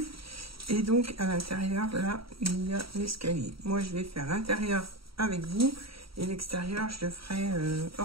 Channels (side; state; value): left; late; 0.75 ms